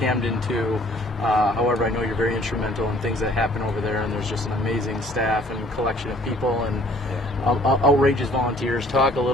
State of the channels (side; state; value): both; normal; correlation 0.56